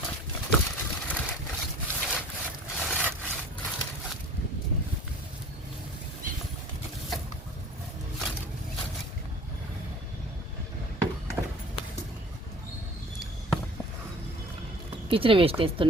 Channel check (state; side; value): normal; both; correlation 0.46